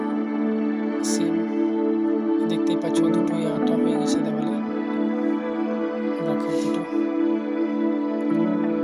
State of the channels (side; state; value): both; identical; correlation 1.00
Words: সেম দেখতেই পাচ্ছ দুটোই আটা হয়ে গেছে দেওয়ালে রাখার দুটো।